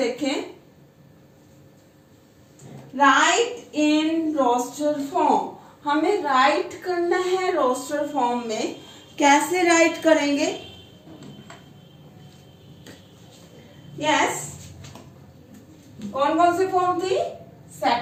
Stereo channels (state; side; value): identical; both; correlation 1.00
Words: राइट इन रोस्टर फॉर्म, हमें राइट करना है रोस्टर फॉर्म में। कैसे राइट करेंगे? यस, कौन कौन से फॉर्म थी?